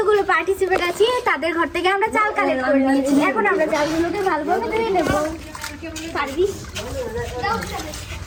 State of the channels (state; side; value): identical; both; correlation 1.00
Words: পার্টিসিপেট আছি তাদের ঘর থেকে আমরা চাল কালেক্ট করে নিয়েছি। এখন আমরা চালগুলোকে ভালোভাবে ধুয়ে নেবো। পারবি?